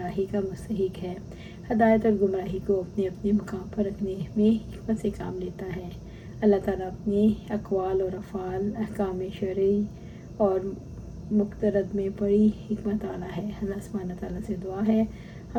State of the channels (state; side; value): identical; both; correlation 1.00